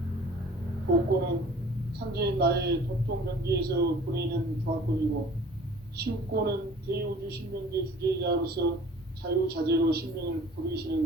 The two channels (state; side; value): normal; both; correlation 0.48